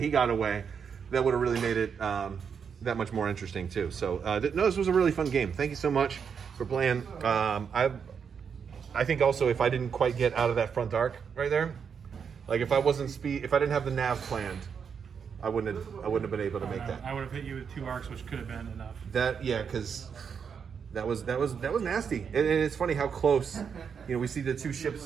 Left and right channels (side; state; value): left; quieter; 6.7 dB